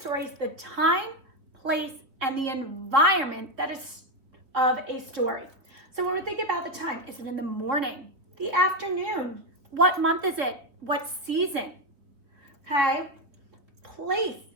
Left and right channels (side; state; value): left; late; 3.7 ms